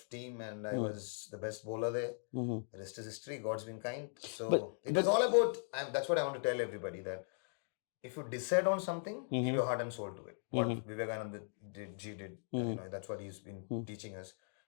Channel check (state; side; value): silent; right; digital silence